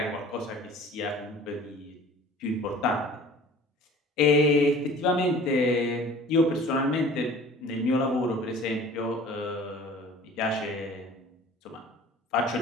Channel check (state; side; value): normal; both; correlation 0.46